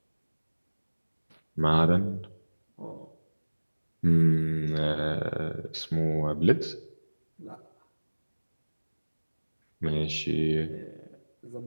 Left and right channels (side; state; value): both; inverted; correlation -1.00